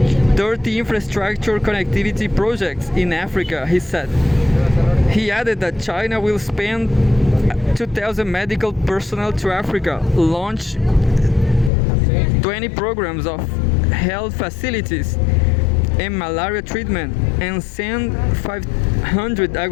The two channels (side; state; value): right; drops out; at 11.7 s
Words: 30 infrastructure connectivity projects in Africa, he said. He added that China will spend 2,000 medical personnel to Africa, launch 20 programs of health facilities and malaria treatment, and send 500